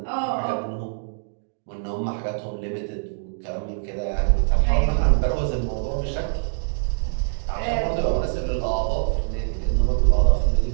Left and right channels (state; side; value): silent; left; digital silence